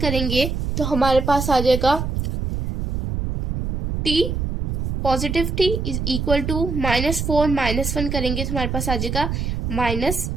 करेंगे तो हमारे पास आ जाएगा t positive t is equal to -4 -1 करेंगे तो हमारे पास आ जाएगा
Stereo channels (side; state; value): right; noise; rumble, 2 dB below the sound